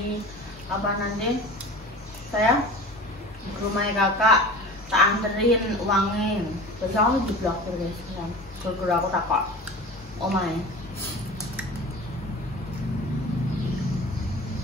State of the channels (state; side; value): normal; both; correlation 0.37